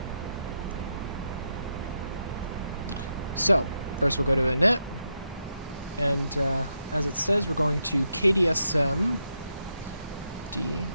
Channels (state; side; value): inverted; both; correlation -0.84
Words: So, first we'll go to init, and as it says, we're going to KDSM